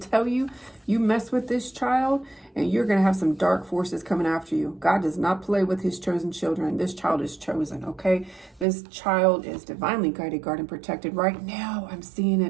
you, you mess with this child and you're going to have some dark forces coming after you. God does not play with his chosen children. This child is chosen, okay? This child is divinely guided, guarded, and protected. Right now, I'm seeing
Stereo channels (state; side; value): drops out; left; at 8.7 s